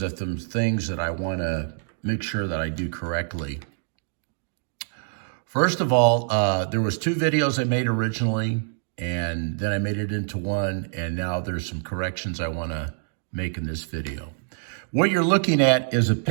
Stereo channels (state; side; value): silent; left; digital silence